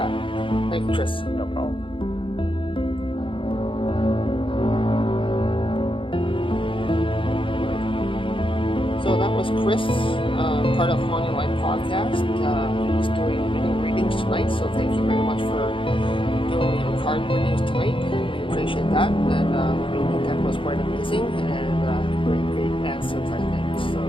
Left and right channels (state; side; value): late; right; 0.25 ms